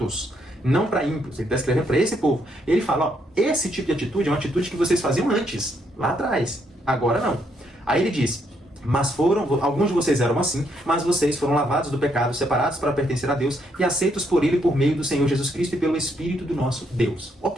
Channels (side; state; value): both; normal; correlation 0.74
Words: não para ímpios. Ele está escrevendo para esse povo. Ele fala, esse tipo de atitude é uma atitude que vocês faziam antes, lá atrás. Agora não. Aí ele diz, mas alguns de vocês eram assim, mas vocês foram lavados do pecado, separados para pertencer a Deus e aceitos por Ele por meio do Senhor Jesus Cristo e pelo Espírito do nosso Deus.